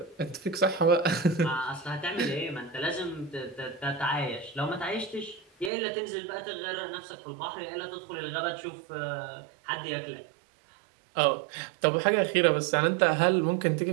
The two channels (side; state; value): left; drops out; at 5.7 s